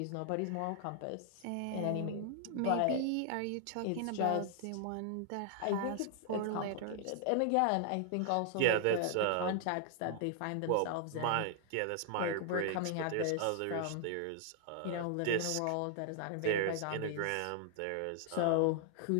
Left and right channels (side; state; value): both; different; correlation -0.01